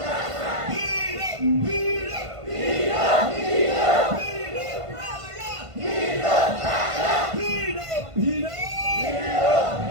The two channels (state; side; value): late; left; 1.5 ms